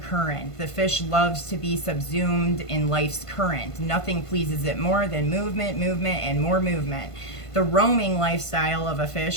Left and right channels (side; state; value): right; late; 1.5 ms